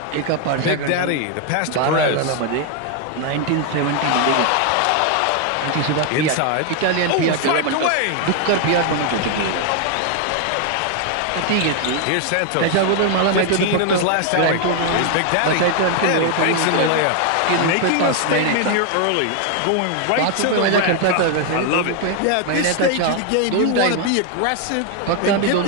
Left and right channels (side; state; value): both; different; correlation 0.01